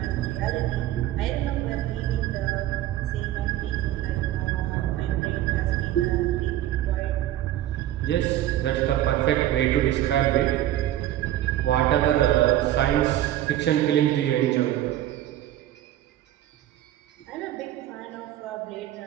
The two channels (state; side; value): quieter; left; 13.3 dB